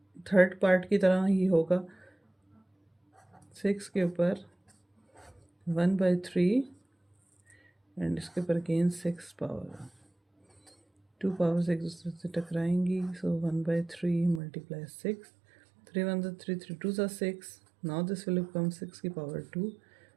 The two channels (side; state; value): left; drops out; at 14.4 s